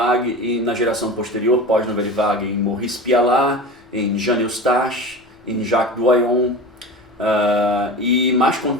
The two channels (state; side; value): normal; both; correlation 0.31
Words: e na geração posterior, pós-Nouvelle Vague, em Maurice Pialat, em Jean Eustache, em Jacques Doyon, e mais